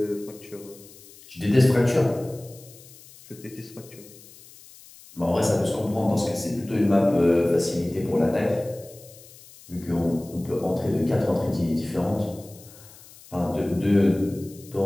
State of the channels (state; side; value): noise; left; hiss, 21 dB below the sound